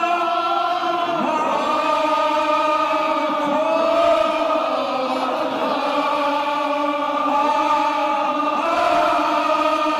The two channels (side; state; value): both; identical; correlation 1.00